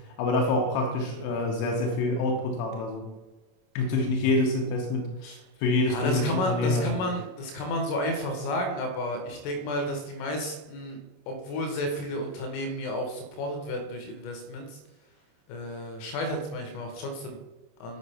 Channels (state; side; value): late; right; 27 ms